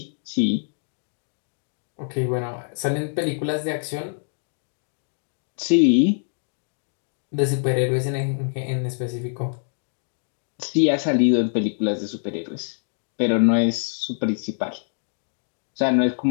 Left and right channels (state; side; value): silent; right; digital silence